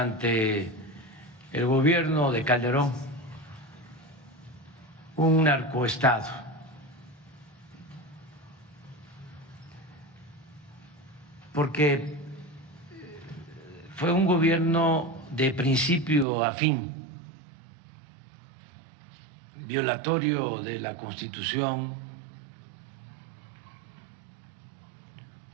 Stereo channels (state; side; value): drops out; left; at 16.2 s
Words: el gobierno de Calderón un narcoestado. Porque fue un gobierno de principio a fin, violatorio de la Constitución,